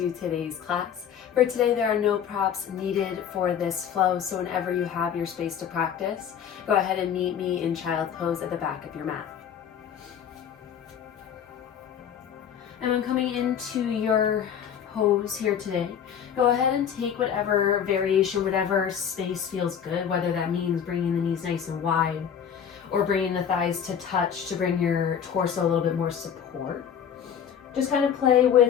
today's class. For today, there are no props needed for this flow, so whenever you have your space to practice, go ahead and meet me in child pose at the back of your mat. And when coming into your pose here today, go ahead and take whatever variation, whatever space feels good, whether that means bringing the knees nice and wide or bringing the thighs to touch to bring your torso a little bit more support. Just kind of play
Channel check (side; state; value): right; quieter; 8.3 dB